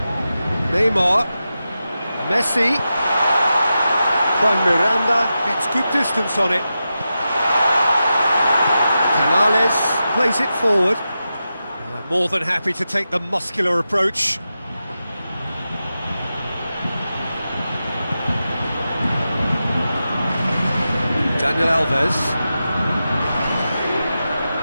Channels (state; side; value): inverted; both; correlation -0.91